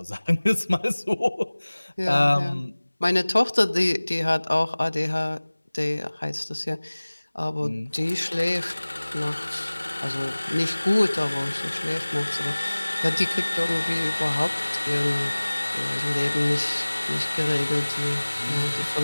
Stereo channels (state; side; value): inverted; both; correlation -1.00